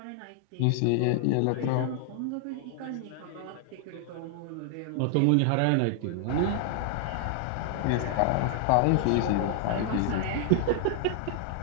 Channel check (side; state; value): both; different; correlation -0.01